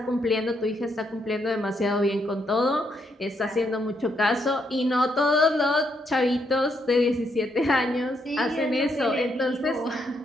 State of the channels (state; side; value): normal; both; correlation 0.76